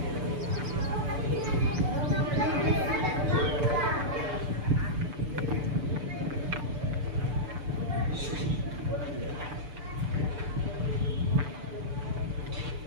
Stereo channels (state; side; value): late; left; 6.9 ms